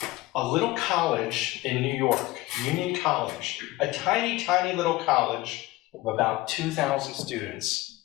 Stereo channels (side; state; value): right; quieter; 18.9 dB